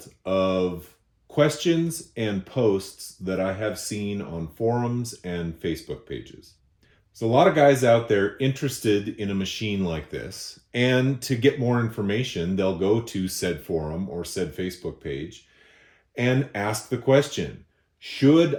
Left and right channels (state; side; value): identical; both; correlation 1.00